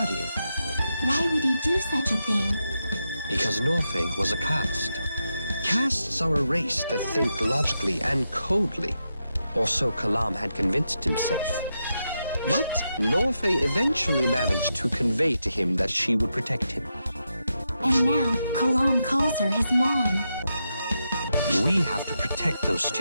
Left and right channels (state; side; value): inverted; both; correlation -0.86